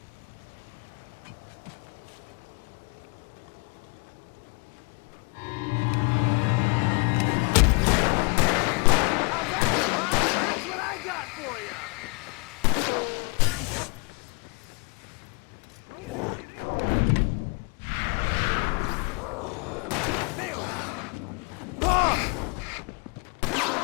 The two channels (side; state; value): right; quieter; 32.5 dB